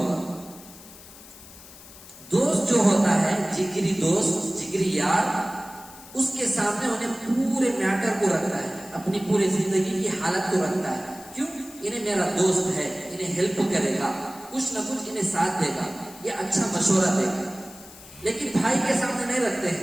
دوست جو ہوتا ہے جگری دوست، جگری یار، اس کے سامنے انہیں پورے میٹر کو رکھتا ہے، اپنی پوری زندگی کی حالت کو رکھتا ہے. کیوں؟ انہیں میرا دوست ہے، انہیں ہیلپ کرے گا، کچھ نہ کچھ انہیں ساتھ دے گا، یہ اچھا مشورہ دے گا. لیکن بھائی کے سامنے نہیں رکھتے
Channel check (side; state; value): left; noise; hiss, 19 dB below the sound